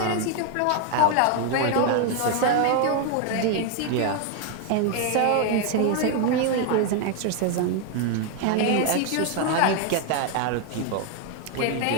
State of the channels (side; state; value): both; different; correlation 0.01